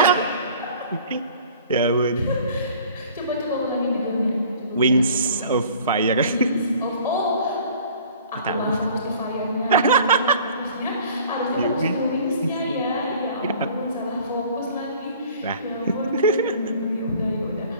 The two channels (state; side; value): inverted; both; correlation -0.49